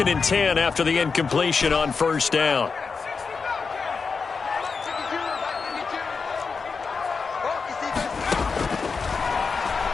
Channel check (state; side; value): quieter; right; 5.0 dB